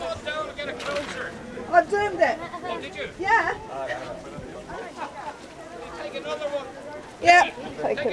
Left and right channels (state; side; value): identical; both; correlation 1.00